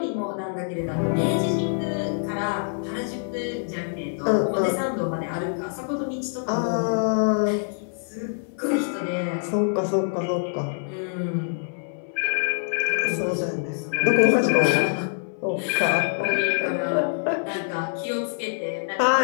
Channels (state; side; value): silent; right; 62 dB below the other